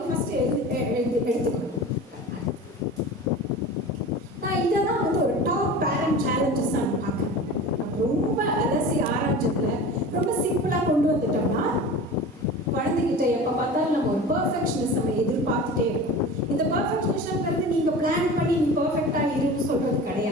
ஃபஸ்ட்டு எடுத்துக்கணும். நான் இதை தான் வந்து ஒரு டாப் பேரண்ட் சேலஞ்சஸ் நான் பார்க்குறேன். ரொம்ப அலசி ஆராய்ச்சதில் ரொம்ப சிம்பிளாக கொண்டு வந்துட்டோம்னா, குழந்தைகிட்ட எப்போ பார்த்தாலும் நம்ம ஒரு பர்ஃபெக்ஷனிஸ்ட் நம்ம எதிர்பார்த்துட்டே இருக்கோம். இந்த பர்ஃபெக்ஷனிஸ்ட்ங்கிறது நீங்கள் பிளான் பண்ணி நீ பர்ஃபெக்டாக இருன்னு சொல்கிறது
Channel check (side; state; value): both; normal; correlation 0.35